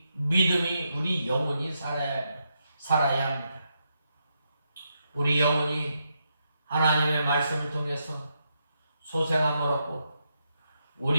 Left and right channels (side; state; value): both; inverted; correlation -0.82